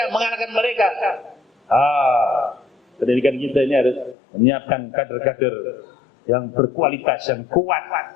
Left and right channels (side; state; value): right; drops out; at 4.2 s